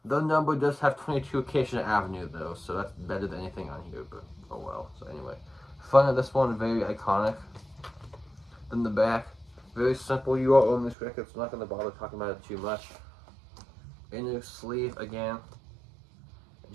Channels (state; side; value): drops out; left; at 11.0 s